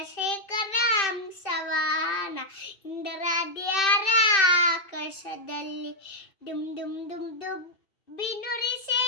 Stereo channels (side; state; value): right; late; 2.6 ms